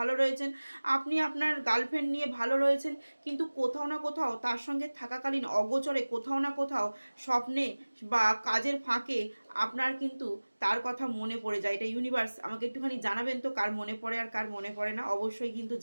রয়েছেন, আপনি আপনার গার্লফ্রেন্ড নিয়ে ভালো রয়েছেন, কিন্তু কোথাও না কোথাও তার সঙ্গে থাকাকালীন অগোচরে কোথাও না কোথাও স্বপ্নে বা কাজের ফাঁকে আপনার কিন্তু তার কথা মনে পড়ে যায়। এটা ইউনিভার্স। আমাকে একটুখানি জানাবেন তো কার মনে পড়ে আর কার মনে পড়ে না, অবশ্যই কিন্তু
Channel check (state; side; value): inverted; both; correlation -1.00